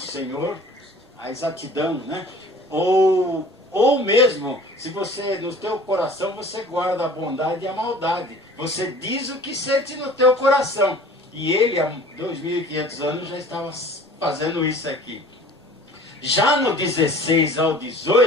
a exatidão, né? Ou mesmo, se você, no teu coração, você guarda a bondade e a maldade. Você diz o que sente no teu coração. E ele, há 2.500 anos, já estava fazendo isso aqui. Já no 16 ao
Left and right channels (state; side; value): normal; both; correlation 0.47